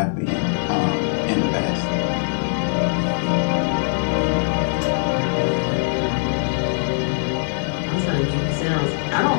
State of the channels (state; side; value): silent; right; 65 dB below the other